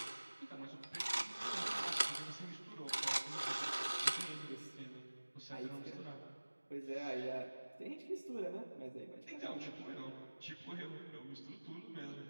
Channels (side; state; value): both; inverted; correlation -1.00